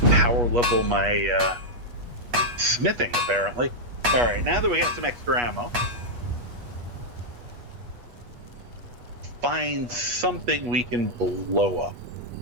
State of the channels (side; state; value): left; late; 8.3 ms